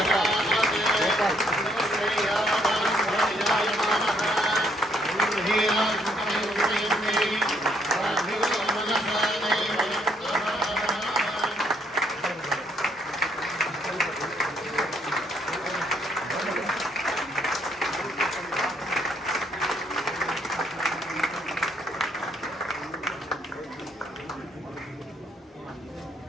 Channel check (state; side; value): normal; both; correlation 0.70